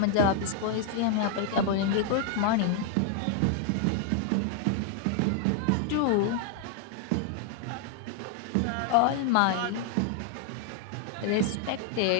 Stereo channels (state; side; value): different; both; correlation 0.00